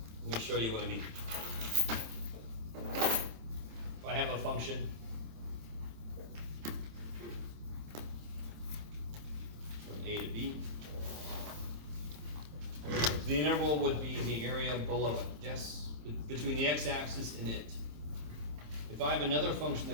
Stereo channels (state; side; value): late; left; 26 ms